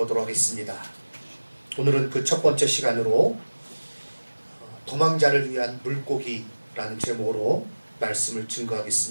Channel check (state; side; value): inverted; both; correlation -1.00